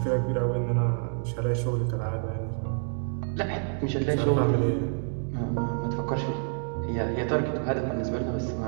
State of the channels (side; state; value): left; silent; 59 dB below the other